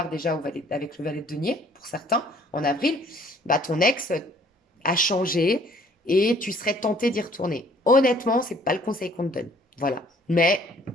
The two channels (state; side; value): normal; both; correlation 0.58